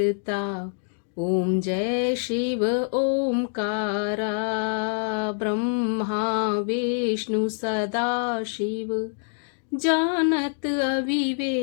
ओम जय शिव ओमकारा ब्रह्मा विष्णु सदा शिव जानत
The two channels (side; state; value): right; silent; digital silence